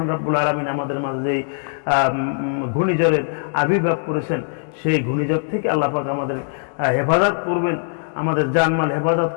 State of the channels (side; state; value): right; silent; digital silence